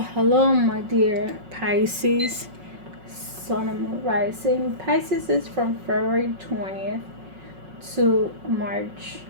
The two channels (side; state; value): left; late; 5.4 ms